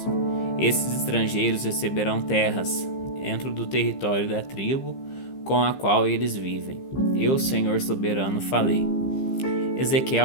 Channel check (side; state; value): right; late; 15 ms